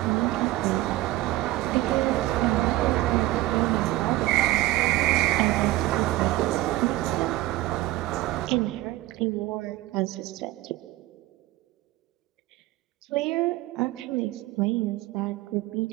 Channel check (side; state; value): left; quieter; 17.1 dB